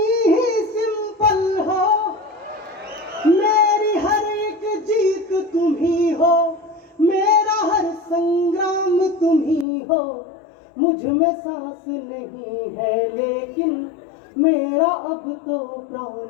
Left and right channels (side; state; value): right; drops out; at 9.7 s